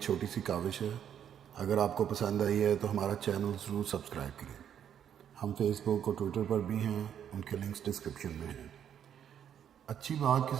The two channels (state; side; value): quieter; left; 9.1 dB